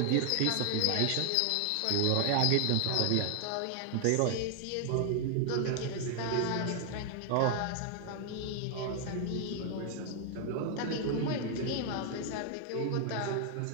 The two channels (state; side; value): different; both; correlation 0.00